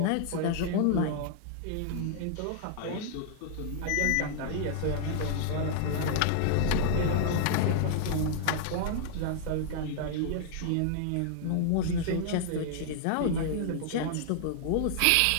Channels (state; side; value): different; both; correlation -0.01